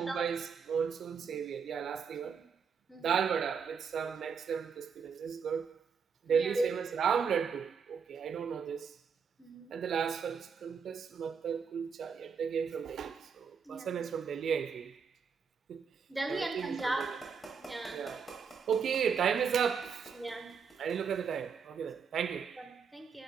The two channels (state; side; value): quieter; left; 6.3 dB